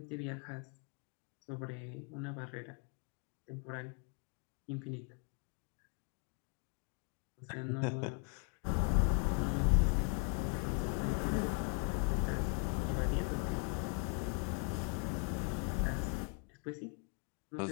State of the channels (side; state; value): right; quieter; 36.2 dB